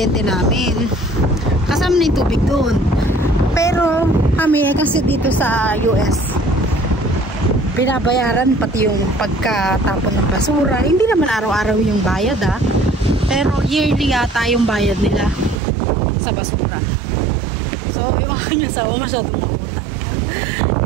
namin, kasama na yung tubig doon. Pero kami kasi dito sa US, binabayaran pati yung pagkatapon ng basura. Hindi naman araw-araw yung bayad pero yearly yata yung bayad nila sa basura. So yung aking asawa masyadong mautang.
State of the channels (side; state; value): left; drops out; at 15.6 s